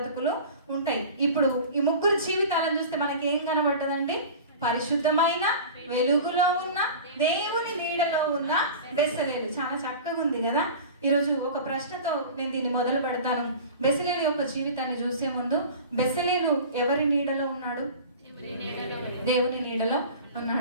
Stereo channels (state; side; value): inverted; both; correlation -0.37